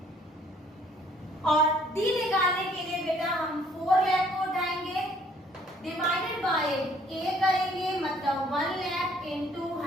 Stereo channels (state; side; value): normal; both; correlation 0.61